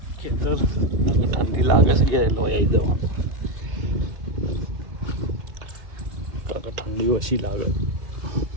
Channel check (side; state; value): left; late; 2.7 ms